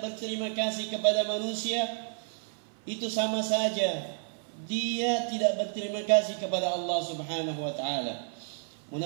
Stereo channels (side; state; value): left; silent; 57 dB below the other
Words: berterima kasih kepada manusia itu sama saja dia tidak berterima kasih kepada Allah Subhanahu wa taala.